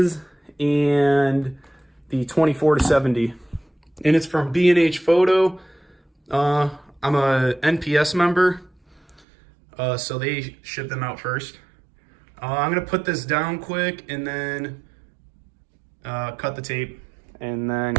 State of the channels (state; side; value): drops out; left; at 9.2 s